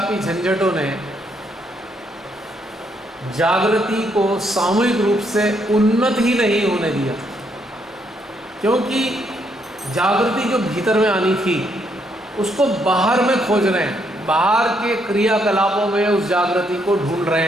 झंझटों ने जागृति को सामूहिक रूप से उन्नत ही नहीं होने दिया। क्योंकि जागृति जो भीतर में आनी थी उसको बाहर में खोज रहे हैं, बाहर के क्रियाकलापों में उस जागृति को ढूंढ रहे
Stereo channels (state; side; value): normal; both; correlation 0.74